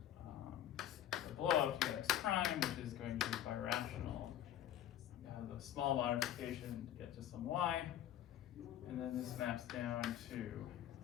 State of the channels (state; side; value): quieter; right; 11.5 dB